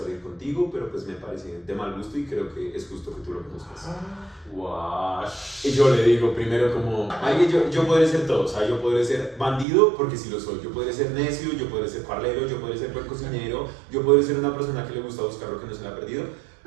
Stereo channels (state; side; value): drops out; left; at 9.7 s